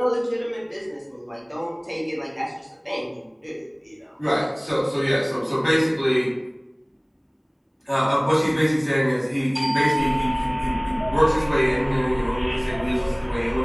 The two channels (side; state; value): both; identical; correlation 1.00